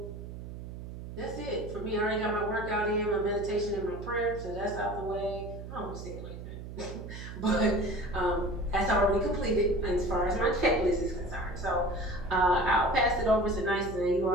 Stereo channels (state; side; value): noise; right; hum, 10 dB below the sound